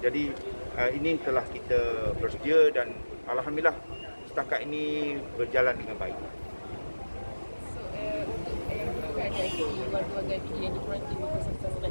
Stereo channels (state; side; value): inverted; both; correlation -1.00